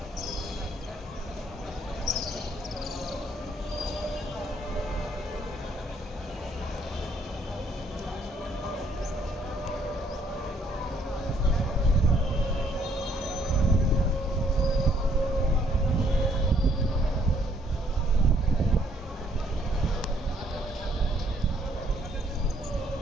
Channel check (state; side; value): normal; both; correlation 0.66